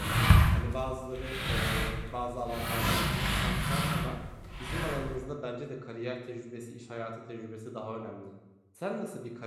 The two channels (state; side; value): identical; both; correlation 1.00